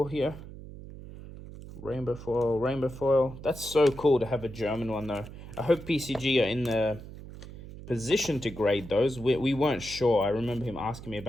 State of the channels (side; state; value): right; noise; hum, 14 dB below the sound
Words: here. Rainbow foil, rainbow foil. That's so cool to have a German one though. I hope PCG are in the position to grade those. We weren't sure. I remember him asking me